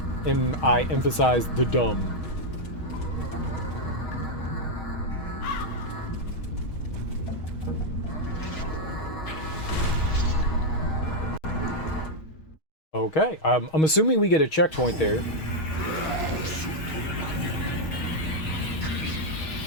and I emphasize the dumb. Okay, I'm assuming we get a checkpoint there.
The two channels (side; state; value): right; late; 6.3 ms